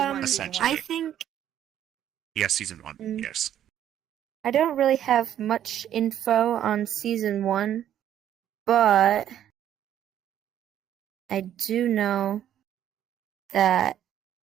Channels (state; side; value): quieter; left; 10.8 dB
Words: Essentially. I think Yes, season 1. Mm. Yes. I don't really have much info on season 1, but I do know that